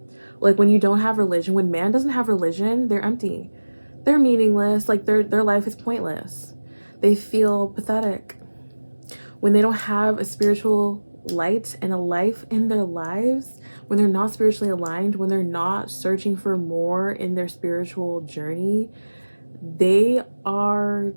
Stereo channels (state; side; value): inverted; both; correlation -1.00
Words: Like, when you don't have religion, when man doesn't have religion, they're empty. They're meaningless. Like, their life is pointless. They feel pathetic. When they don't have a spiritual light and a life in their lives, when they're not spiritually aligned, when they're not searching for more in their spiritual journey, they are